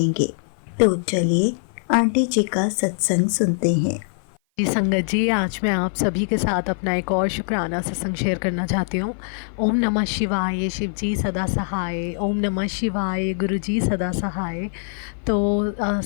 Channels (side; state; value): right; silent; 55 dB below the other